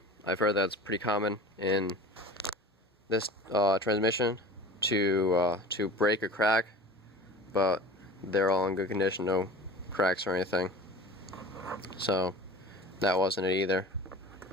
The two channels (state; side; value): normal; both; correlation 0.38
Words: I've heard that's pretty common in this transmission to break or crack, but they're all in good condition, no cracks or anything. So that wasn't it either.